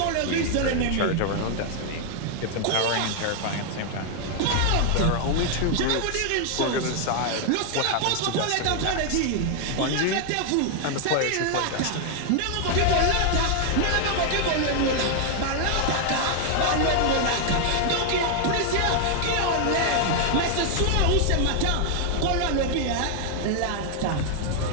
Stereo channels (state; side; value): different; both; correlation 0.00